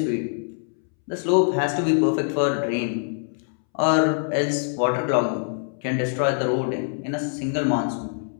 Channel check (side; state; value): right; silent; 63 dB below the other